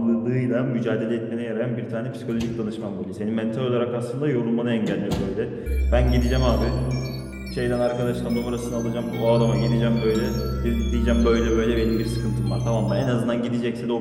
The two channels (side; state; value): both; identical; correlation 1.00